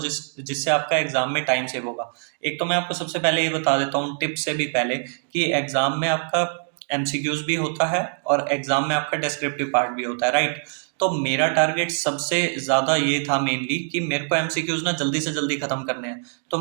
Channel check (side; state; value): left; silent; digital silence